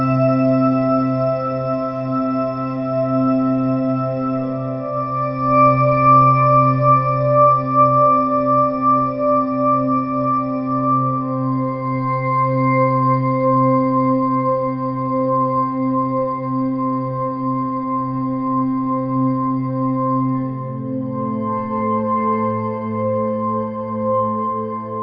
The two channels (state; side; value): identical; both; correlation 1.00